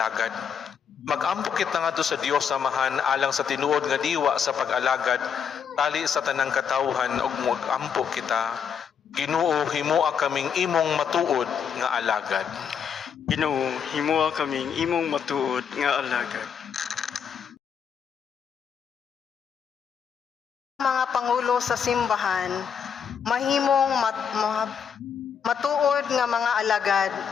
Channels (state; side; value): quieter; right; 7.3 dB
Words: Mag-ampo kita nga sa Dios Amahan alang sa tinuod nga diwa sa pag-alagad tali sa tanang katawhan ug mag-ampo kita. Ginoo, himoa kaming imong matuod nga alagad. Ginoo, himoa kaming imong matuod nga alagad. Mga pangulo sa simbahan, mahimong matuod nga mga alagad